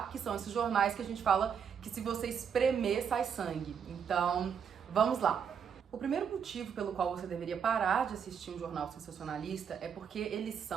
Que são esses jornais que a gente fala que se você espremer, sai sangue. Então, vamos lá. O primeiro motivo pelo qual você deveria parar de assistir um jornal sensacionalista é porque eles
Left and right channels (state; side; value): quieter; left; 7.3 dB